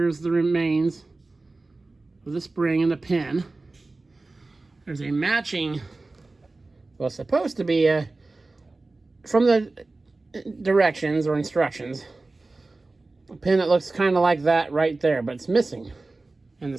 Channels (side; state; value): left; quieter; 3.3 dB